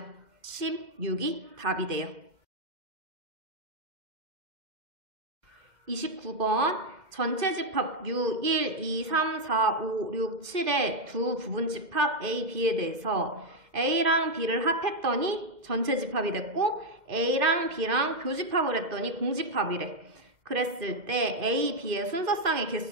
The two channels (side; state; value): left; late; 2.1 ms